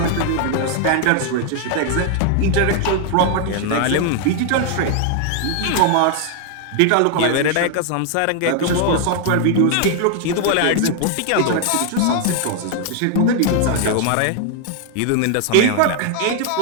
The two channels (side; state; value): both; different; correlation 0.00